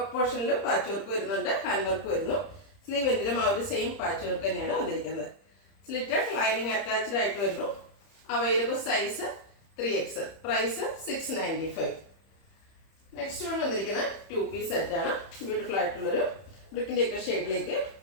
പോർഷനിൽ പാച്ച് വർക്ക് വരുന്നുണ്ട്, ഹാൻഡ് വർക്ക് വരുന്നു. സ്ലീവ് എൻഡിലും ആ ഒരു സെയിം പാച്ച് വർക്ക് തന്നെയാണ് വന്നിരിക്കുന്നത്. സ്ലിറ്റഡ്, ലൈനിങ് അറ്റാച്ച്ഡ് ആയിട്ട് വരുന്നു. Available size 3XL. Price 695. Next one വന്നിരിക്കുന്നത് 2 പീസ് സെറ്റാണ്. ബ്യൂട്ടിഫുൾ ആയിട്ടുള്ളൊരു ബ്രിക്കിൻ്റെ ഒക്കെ ഷെയ്ഡിലേക്ക്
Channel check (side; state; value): right; late; 30 ms